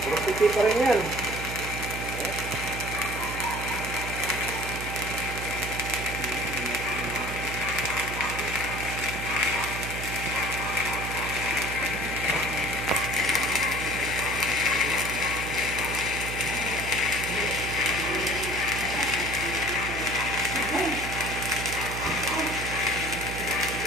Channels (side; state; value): right; noise; hum, 6 dB below the sound